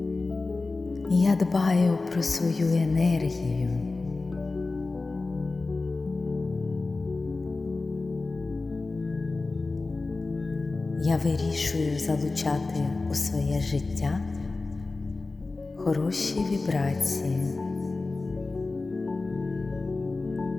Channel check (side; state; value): right; quieter; 3.6 dB